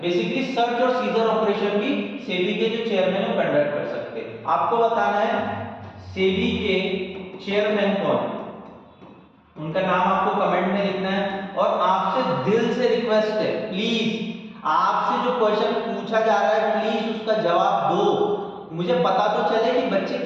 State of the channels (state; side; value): identical; both; correlation 1.00